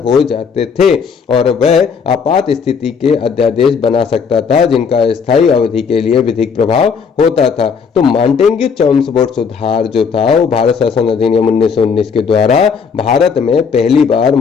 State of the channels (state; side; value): quieter; right; 6.0 dB